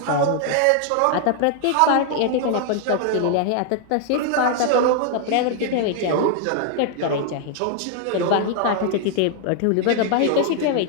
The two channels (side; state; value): both; different; correlation 0.00